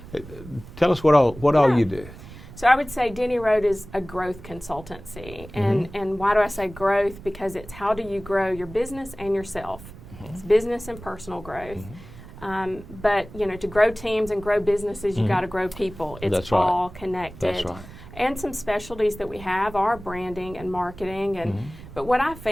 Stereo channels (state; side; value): noise; right; rumble, 16 dB below the sound